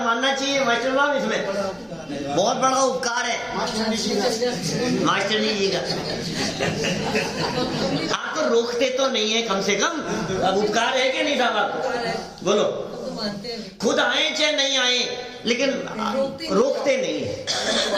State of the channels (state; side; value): identical; both; correlation 1.00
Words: चाहिए मास्टर साहब, इसमें बहुत बड़ा उपकार है मास्टर जी का। आप तो रोकते तो नहीं है कम से कम, अब उपकार है कि नहीं साहब आपको? बोलो, खुद आए चाहे नहीं आए, लेकिन रोकते नहीं है।